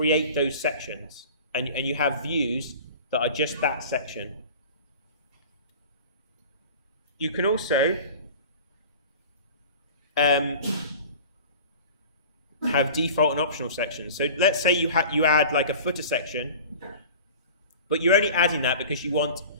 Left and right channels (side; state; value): both; inverted; correlation -0.39